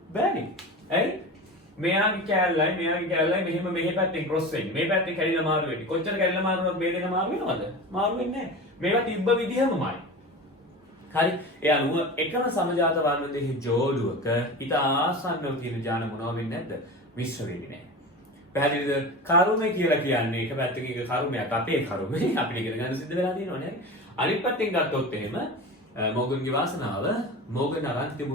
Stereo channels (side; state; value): both; normal; correlation 0.30